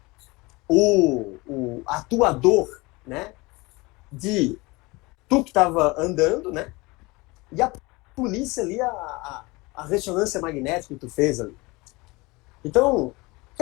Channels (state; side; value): quieter; right; 23.9 dB